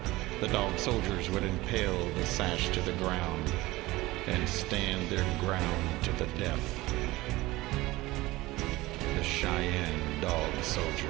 the Dog Soldiers would impale the sash to the ground and stand their ground to the death. The Cheyenne Dog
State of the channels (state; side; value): quieter; left; 19.3 dB